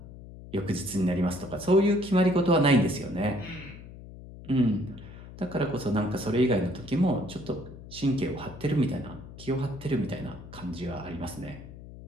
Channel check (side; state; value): left; noise; hum, 15 dB below the sound